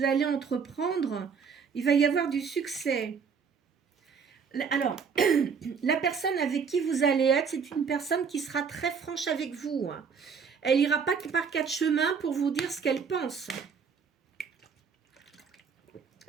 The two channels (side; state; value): left; quieter; 6.1 dB